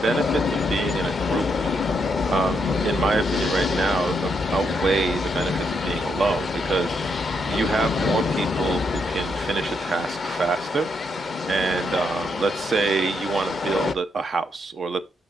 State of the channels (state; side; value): normal; both; correlation 0.78